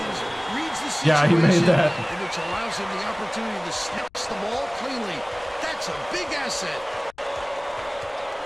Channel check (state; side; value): noise; left; rumble, 28 dB below the sound